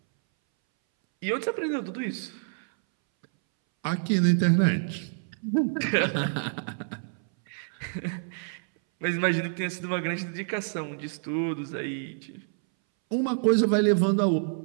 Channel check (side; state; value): left; silent; 60 dB below the other